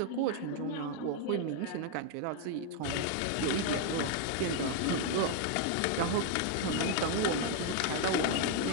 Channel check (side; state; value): both; different; correlation 0.01